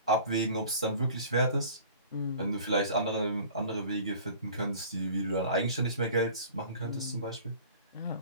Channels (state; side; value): inverted; both; correlation -0.45